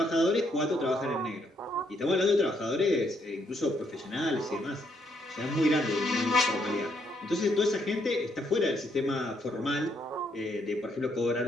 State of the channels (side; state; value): both; normal; correlation 0.73